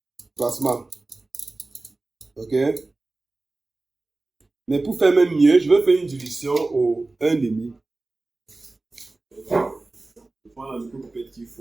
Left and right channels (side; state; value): left; quieter; 3.2 dB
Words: plasma. Ok? Mais pour faire même mieux, je vais faire une dilution au 1,5. Je prends la micropipette qu'il